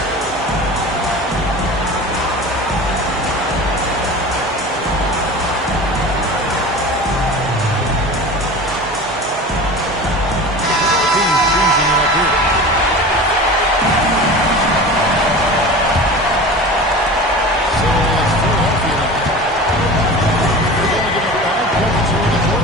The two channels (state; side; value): normal; both; correlation 0.34